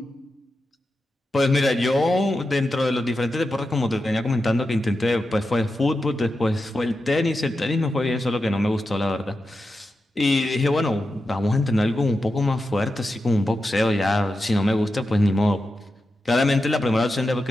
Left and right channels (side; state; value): both; normal; correlation 0.90